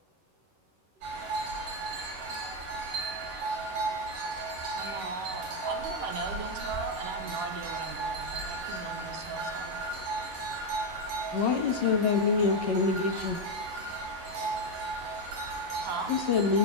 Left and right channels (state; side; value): late; left; 11 ms